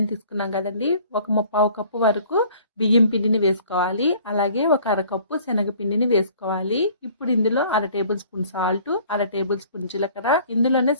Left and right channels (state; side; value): inverted; both; correlation -0.53